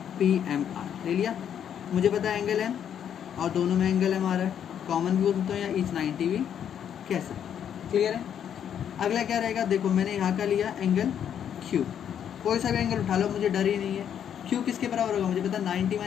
PMR ले लिया। मुझे पता है एंगल M और दोनों में एंगल M आ रहा है, कॉमन भी हो सकता है या ईच 90 भी कैसे। क्लियर है? अगला क्या रहेगा, देखो मैंने यहाँ का लिया एंगल Q, कोई सा भी एंगल उठा लो, मुझे डर ही नहीं है। Q किसके बराबर होगा, मुझे पता 90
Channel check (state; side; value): quieter; right; 9.0 dB